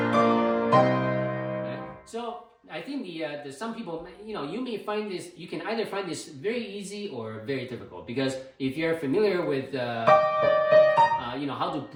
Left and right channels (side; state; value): both; identical; correlation 1.00